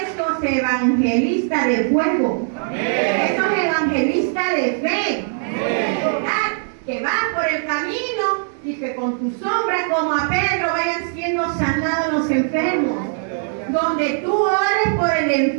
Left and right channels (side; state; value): left; silent; digital silence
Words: estos evangelistas de fuego? Estos evangelistas de fe, ¿verdad?, que van por el camino y que con tu sombra, como a Pedro, vayan siendo sanados los enfermos. Donde tú ores por el